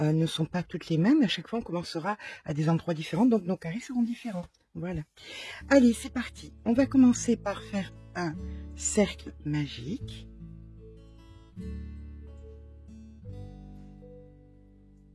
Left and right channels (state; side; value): identical; both; correlation 1.00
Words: sont pas toutes les mêmes, à chaque fois, on commencera à des endroits différents, donc nos carrés seront différents. Voilà. Allez, c'est parti. On va commencer par faire un cercle magique.